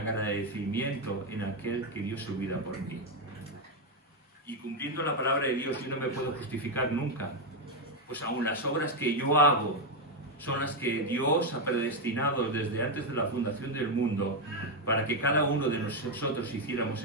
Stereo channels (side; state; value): both; normal; correlation 0.04